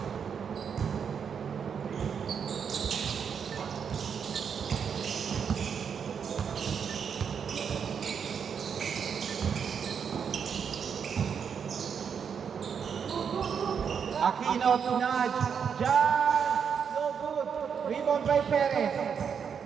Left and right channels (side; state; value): left; quieter; 7.0 dB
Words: Aquino to nudge. Jan, no good. Rebound by Perez.